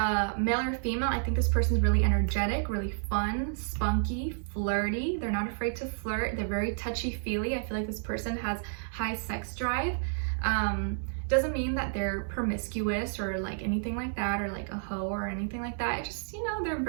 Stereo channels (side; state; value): left; silent; digital silence